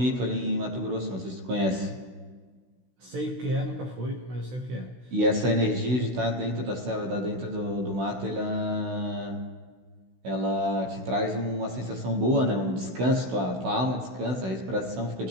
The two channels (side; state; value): left; late; 16 ms